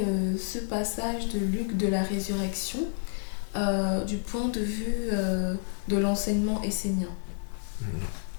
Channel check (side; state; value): right; silent; digital silence